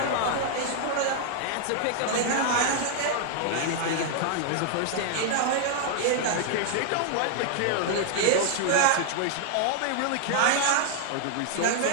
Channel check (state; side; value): different; both; correlation 0.00